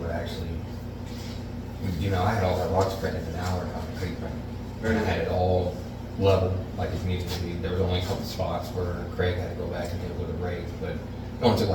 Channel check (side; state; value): both; identical; correlation 1.00